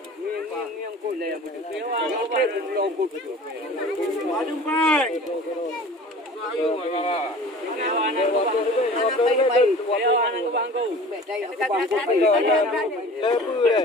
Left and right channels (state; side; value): normal; both; correlation 0.42